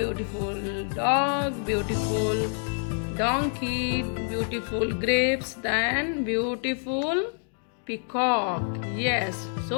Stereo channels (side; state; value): right; silent; 60 dB below the other